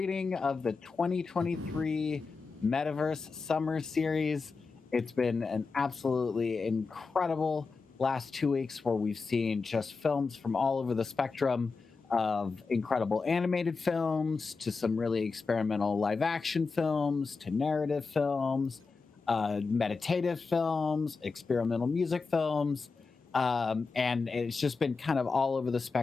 of the 2023 Metaverse Summer Series. It's been an absolutely incredible last 2 weeks where we've seen just films from all over the spectrum of incredible animated films to some really experimental live action films to narrative films, meditative films, experimental music films. And it's just been kind of all over the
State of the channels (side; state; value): right; quieter; 4.5 dB